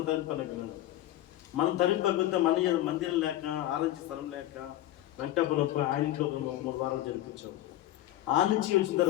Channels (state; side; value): quieter; right; 14.3 dB